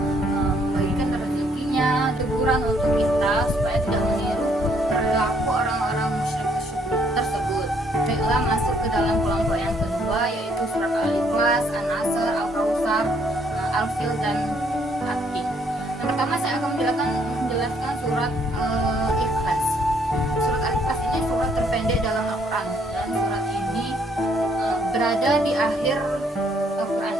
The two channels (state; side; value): normal; both; correlation 0.67